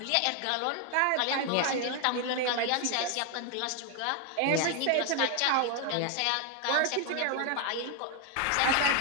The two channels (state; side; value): different; both; correlation 0.01